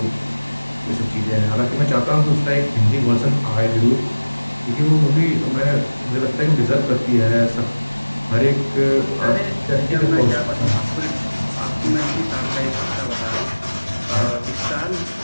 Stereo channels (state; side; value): inverted; both; correlation -1.00